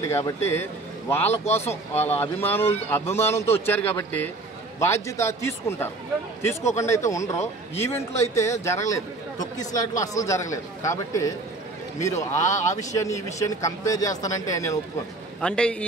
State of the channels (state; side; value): quieter; left; 3.1 dB